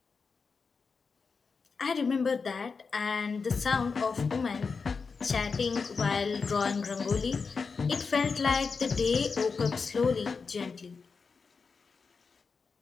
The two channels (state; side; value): quieter; right; 5.0 dB